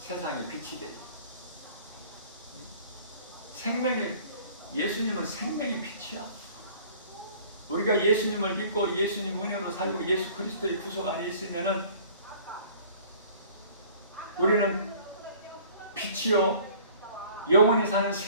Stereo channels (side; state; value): both; inverted; correlation -0.50